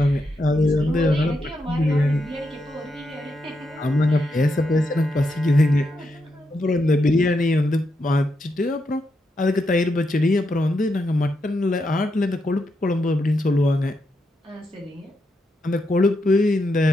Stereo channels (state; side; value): normal; both; correlation 0.83